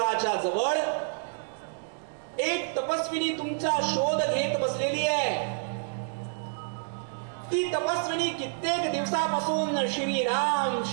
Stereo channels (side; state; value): left; silent; digital silence